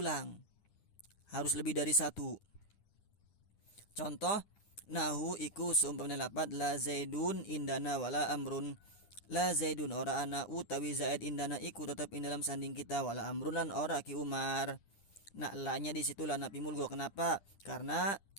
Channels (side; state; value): right; late; 10 ms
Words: Harus lebih dari satu. Contoh, nahu iku seumpamanya lapat la zaidun indana wala amrun. La zaidun ora ana utawi zaid indana iku tetap dalam sanding kita wala amrun lan ora ki Umar. Nah, elaknya di situ lana pi mulgo. Kenapa? Karena